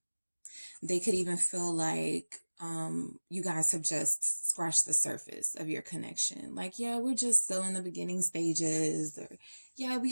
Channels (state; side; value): inverted; both; correlation -1.00